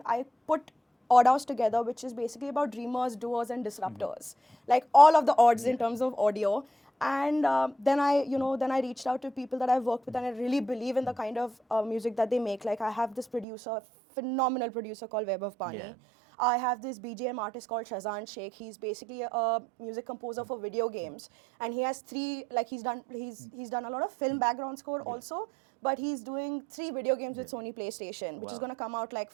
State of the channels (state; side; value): drops out; left; at 13.5 s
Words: I put OddHouse together, which is basically about dreamers, doers, and disruptors. Like all of the odds in terms of audio. And then I reached out to people that I've worked with, and I really believe in the kind of music that they make. Like, I have this producer, phenomenal producer called Vaibhav Pani. Yeah. I have this BGM artist called Sherish Shaikh. He's basically a music composer for video games, and he has he's done a lot of film background score also, but he's doing 3 video games with Sony PlayStation, which is going to come out like